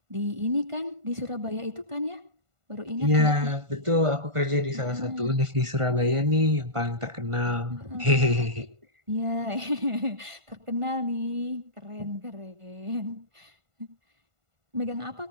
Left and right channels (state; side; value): late; left; 1.5 ms